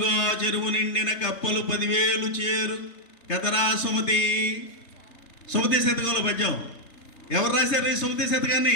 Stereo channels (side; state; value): right; late; 3.4 ms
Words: చెరువు నిండిన కప్పలు 10,000 చేరు కదరా సుమతి. సుమతి శతకంలో పద్యం ఎవరు రాశారు? ఈ సుమతి